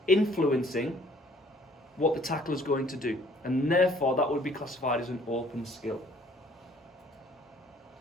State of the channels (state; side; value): normal; both; correlation 0.58